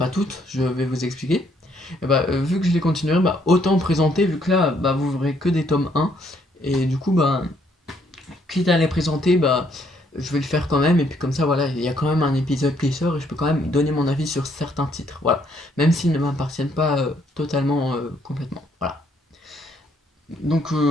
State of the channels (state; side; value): normal; both; correlation 0.69